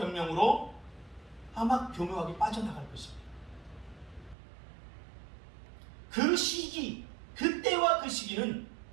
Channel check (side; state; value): left; drops out; at 4.4 s